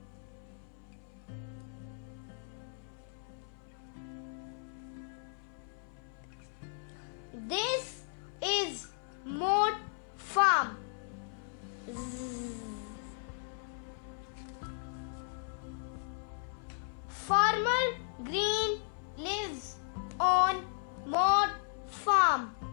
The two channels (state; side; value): silent; right; 54 dB below the other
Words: This is Moat Farm. Farmer Green lives on Moat Farm.